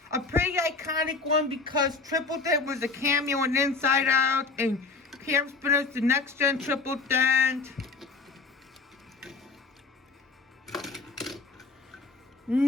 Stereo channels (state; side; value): quieter; right; 4.0 dB